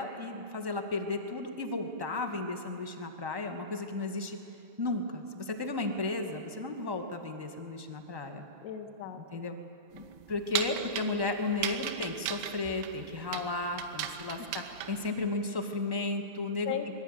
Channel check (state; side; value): late; left; 1.1 ms